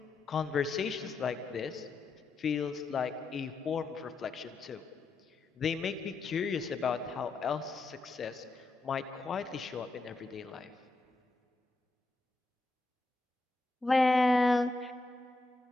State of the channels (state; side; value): quieter; right; 3.4 dB